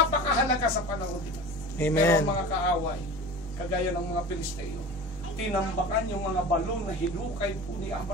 sa panahon nila. Amen. Pero mga kaaway, kagaya ng mga Pilisteo, tinambakan yung mga balon na hinukay po ni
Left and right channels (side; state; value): both; normal; correlation 0.35